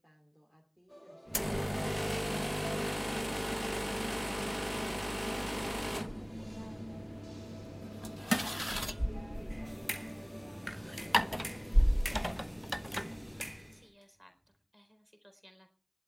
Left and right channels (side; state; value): both; identical; correlation 1.00